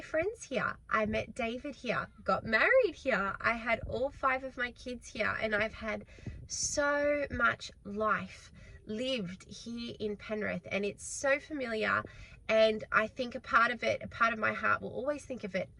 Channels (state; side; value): identical; both; correlation 1.00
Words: friends here. I met David here, got married here. I had all 5 of my kids here, and I've had so much life lived here in Penrith, and it's so familiar. And I think a part of my heart will always think of it